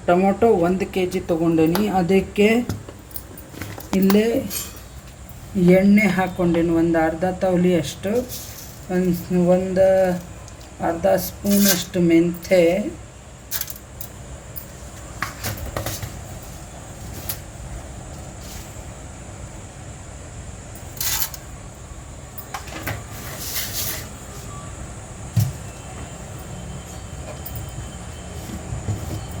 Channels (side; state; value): both; identical; correlation 1.00